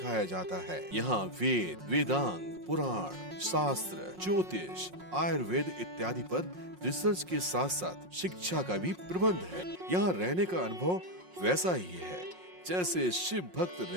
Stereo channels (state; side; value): late; left; 5.5 ms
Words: जाता है। यहाँ वेद, वेदांग, पुराण, शास्त्र, ज्योतिष, आयुर्वेद इत्यादि पर रिसर्च के साथ साथ शिक्षा का भी प्रबंध है। यहाँ रहने का अनुभव वैसा ही है जैसे शिव भक्त